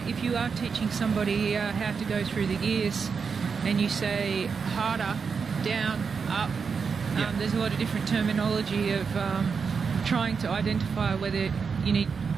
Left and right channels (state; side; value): quieter; left; 5.7 dB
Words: you are teaching somebody how to go through the gears and you say harder, down, up, there's a lot of different terminology of trying to identify whether you need